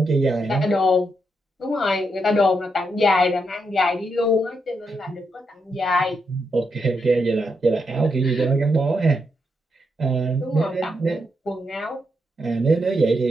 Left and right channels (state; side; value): normal; both; correlation 0.81